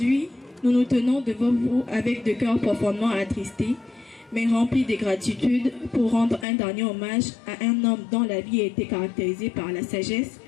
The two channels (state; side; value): drops out; right; at 6.5 s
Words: nous nous tenons devant vous avec de cœurs profondément attristés, mais remplis de gratitude pour rendre un dernier hommage à un homme dont la vie a été caractérisée par la sagesse,